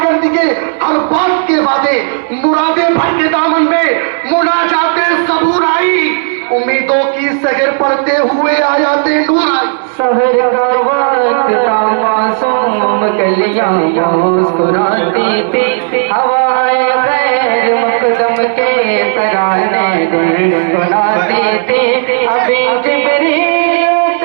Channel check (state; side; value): silent; left; 68 dB below the other